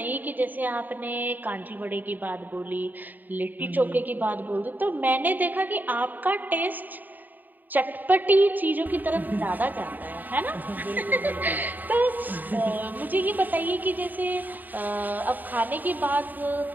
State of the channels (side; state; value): left; late; 0.087 ms